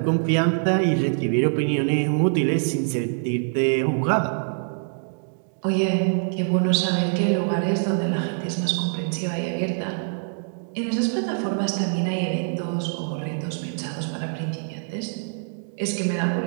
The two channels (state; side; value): silent; left; digital silence